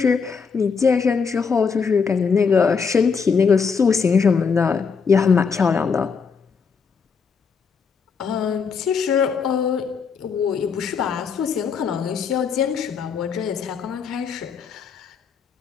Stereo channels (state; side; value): quieter; right; 5.7 dB